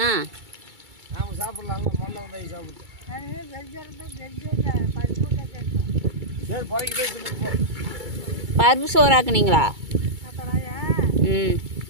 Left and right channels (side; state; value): left; late; 2.3 ms